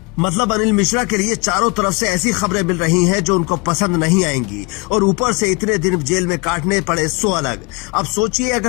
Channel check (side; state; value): right; quieter; 28.4 dB